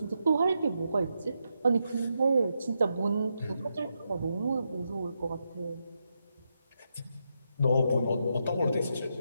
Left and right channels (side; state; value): both; inverted; correlation -0.83